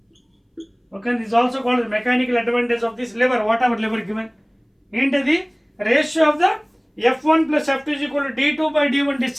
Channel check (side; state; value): both; identical; correlation 1.00